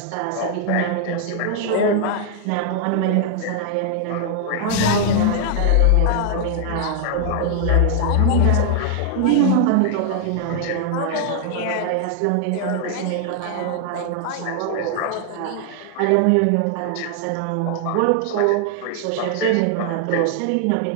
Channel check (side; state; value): both; different; correlation 0.00